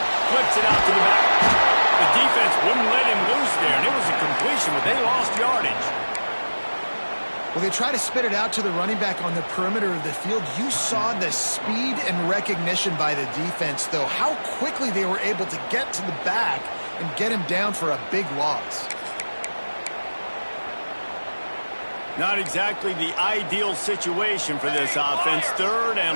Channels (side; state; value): both; inverted; correlation -1.00